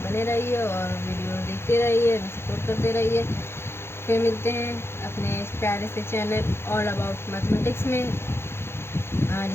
बने रहिए और वीडियो देखते रहिए, सपोर्ट करते रहिए। फिर मिलते हैं अपने इस प्यारे से चैनल ऑल अबाउट मैथमेटिक्स में,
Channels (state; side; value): late; right; 0.12 ms